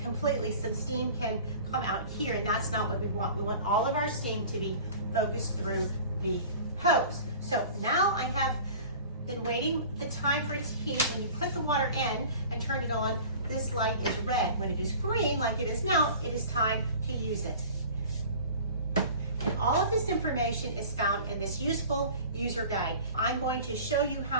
completely, some steam can come out here, and that's not what we want. We want all of our steam to be focused through the hose. So now I have been waiting the time for it to heat. When you put the water in and turn it on, this light is red. When it is green, like it is now, it is time to use it. And all of this information is found in this useful user guide. I'm going to show you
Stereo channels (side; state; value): both; inverted; correlation -0.42